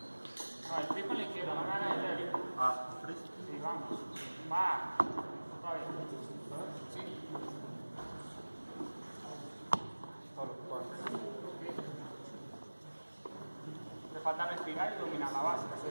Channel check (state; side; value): inverted; both; correlation -1.00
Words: No, el flip con la izquierda, no hagas el derecho. ¿Freeze? Sí, vamos. Va. Otra vez. Sí. falta respirar y dominar la base,